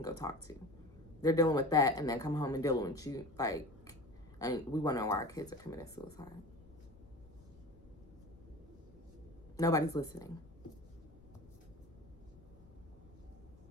go talk to. they're dealing with that and then come home and dealing with you. Like, I mean, we wonder why our kids are committing suicide. Nobody's listening.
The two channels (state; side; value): noise; left; rumble, 23 dB below the sound